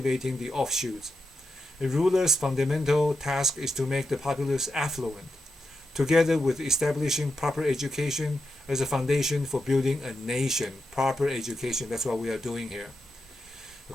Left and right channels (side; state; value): both; normal; correlation 0.87